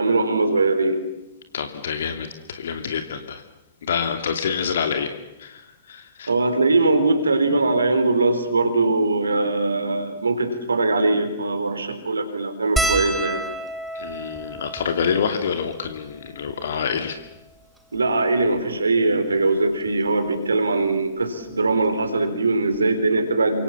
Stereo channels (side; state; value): both; inverted; correlation -0.72